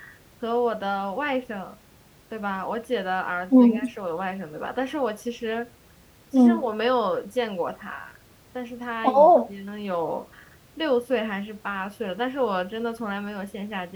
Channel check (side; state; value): both; identical; correlation 1.00